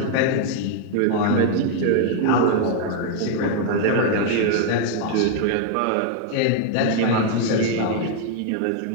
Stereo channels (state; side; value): different; both; correlation 0.00